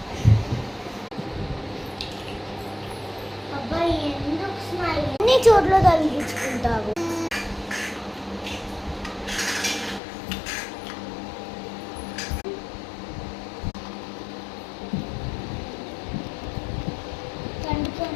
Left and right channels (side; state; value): right; drops out; at 10.0 s